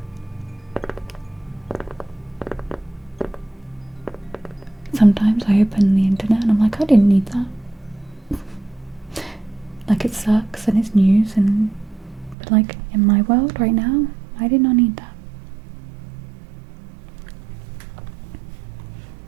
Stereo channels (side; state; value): left; drops out; at 12.4 s